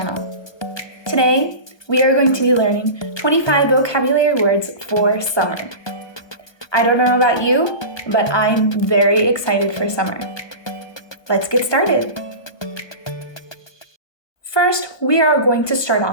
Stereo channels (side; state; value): right; late; 1.3 ms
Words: Today, we are going to be learning 25 vocabulary words for summer. I don't know about you, but I'm very excited for summer. Let's get started. First, we are going to start